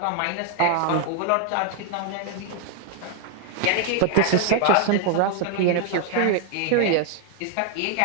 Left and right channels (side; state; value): both; different; correlation 0.00